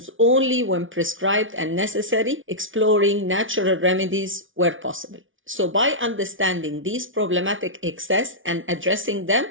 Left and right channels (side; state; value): left; late; 0.57 ms